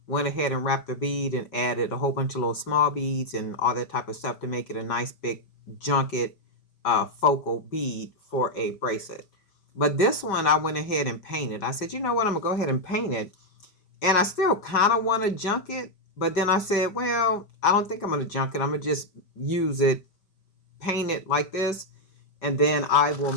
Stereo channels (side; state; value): right; late; 5.1 ms